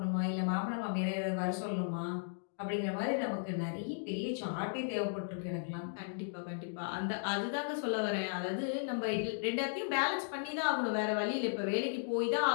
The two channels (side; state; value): right; silent; digital silence